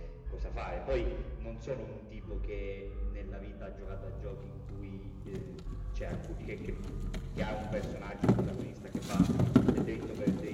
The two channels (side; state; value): both; identical; correlation 1.00